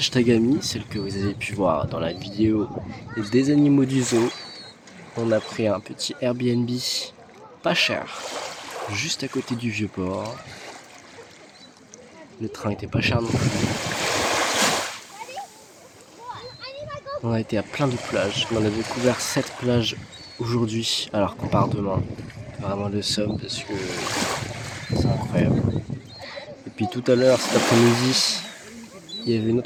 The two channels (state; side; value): identical; both; correlation 1.00